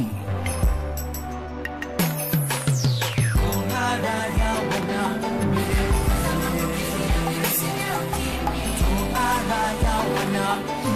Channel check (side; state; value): both; identical; correlation 1.00